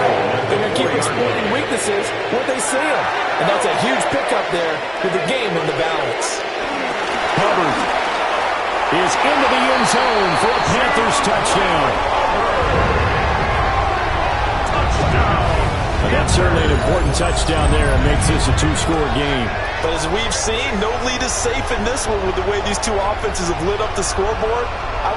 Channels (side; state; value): both; identical; correlation 1.00